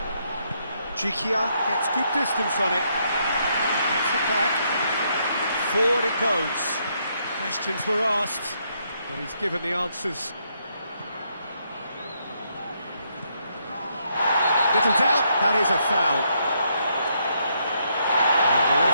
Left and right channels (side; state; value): both; inverted; correlation -0.75